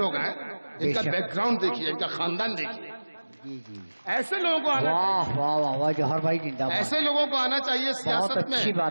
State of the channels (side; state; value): both; inverted; correlation -1.00